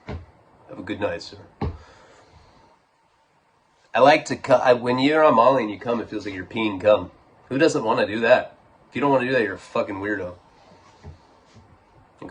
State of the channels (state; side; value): identical; both; correlation 1.00